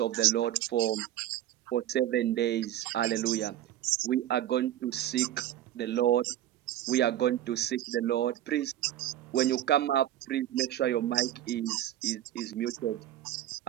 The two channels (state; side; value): quieter; left; 12.6 dB